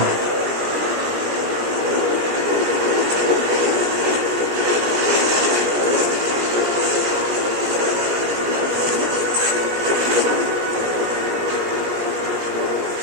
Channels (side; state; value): left; late; 17 ms